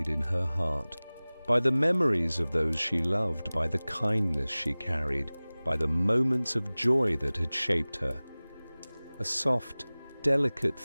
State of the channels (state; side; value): inverted; both; correlation -0.99